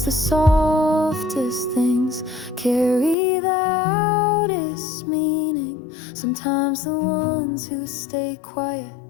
the softest things carry the loudest meaning. Sometimes the ones who stay quiet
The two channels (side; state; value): right; drops out; at 3.2 s